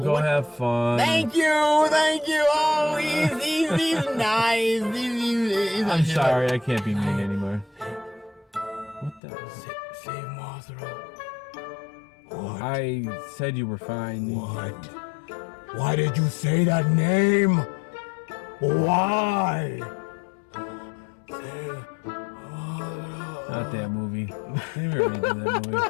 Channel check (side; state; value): right; drops out; at 9.2 s